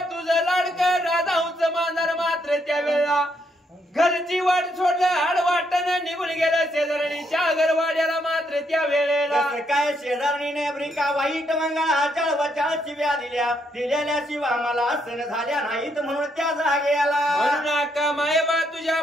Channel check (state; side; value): normal; both; correlation 0.75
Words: तुझं लाडकं राधाऊचं मांजर मात्र त्यावेळेला घरची वाट सोडलं हाड वाटणं निघून गेलं शेजारणीच्या घरवाड्याला मात्र त्या वेळेला कसं काय शेजारणीने ब्रिका वाईट मंगळाच्या वचाळ शिव्या दिलेल्या शिवा मला सण झाल्या नाहीत म्हणून त्या जागेला म्हणून अक्का मायबा तुझ्या